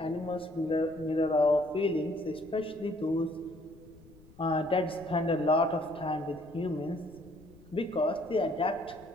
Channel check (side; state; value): left; noise; rumble, 24 dB below the sound